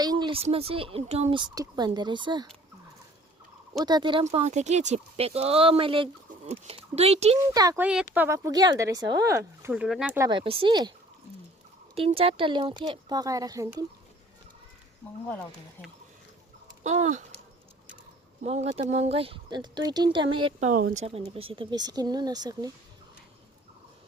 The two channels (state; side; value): normal; both; correlation 0.53